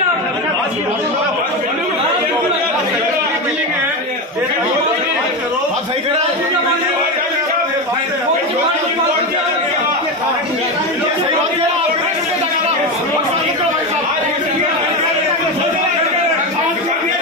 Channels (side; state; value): both; normal; correlation 0.17